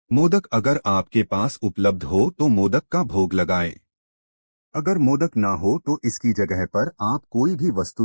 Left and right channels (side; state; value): both; inverted; correlation -1.00